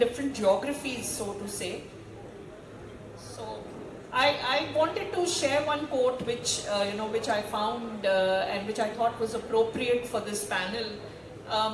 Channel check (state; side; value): identical; both; correlation 1.00